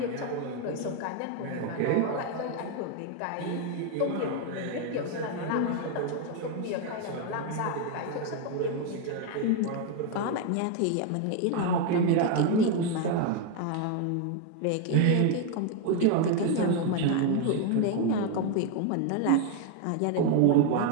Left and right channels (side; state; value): both; different; correlation 0.01